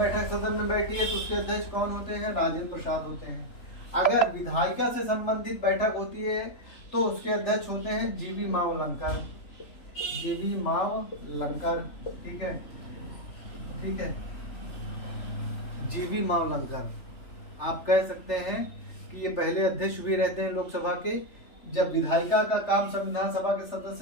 सदन में बैठी है तो उसके अध्यक्ष कौन होते हैं? राजेंद्र प्रसाद होते हैं। अगर विधायिका से संबंधित बैठक होती है तो उसके अध्यक्ष होते हैं जीवी मावलंकर, जीवी मावलंकर, ठीक है, ठीक है, जीवी मावलंकर। आप कह सकते हैं कि ये पहले अध्यक्ष भी रहते हैं लोकसभा के। जब विधायिका का काम संविधान सभा के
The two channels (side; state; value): right; late; 3.4 ms